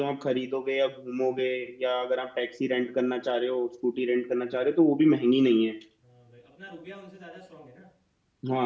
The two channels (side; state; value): both; identical; correlation 1.00